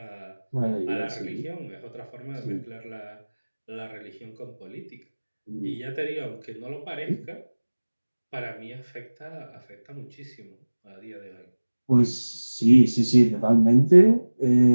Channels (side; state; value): both; inverted; correlation -1.00